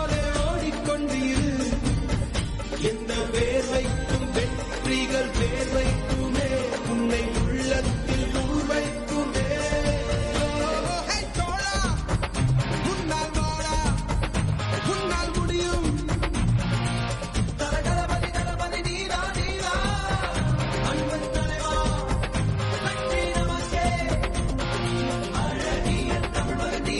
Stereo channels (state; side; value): identical; both; correlation 1.00